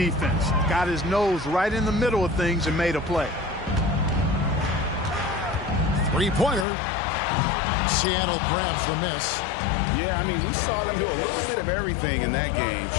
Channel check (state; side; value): drops out; right; at 6.7 s